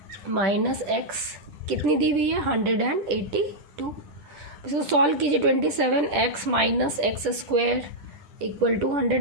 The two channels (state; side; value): late; left; 10 ms